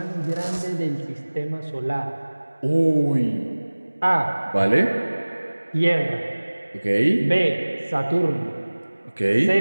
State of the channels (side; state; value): both; inverted; correlation -1.00